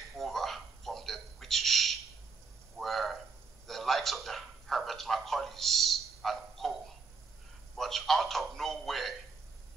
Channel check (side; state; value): left; quieter; 4.8 dB